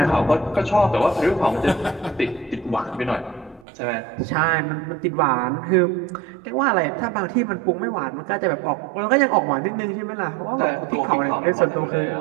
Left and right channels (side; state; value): left; drops out; at 3.7 s